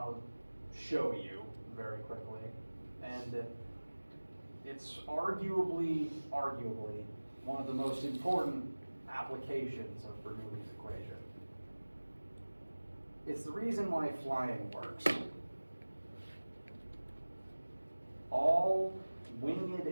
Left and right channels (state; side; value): inverted; both; correlation -1.00